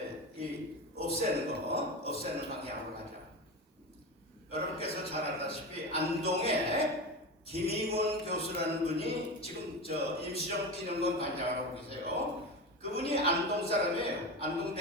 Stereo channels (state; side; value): normal; both; correlation 0.23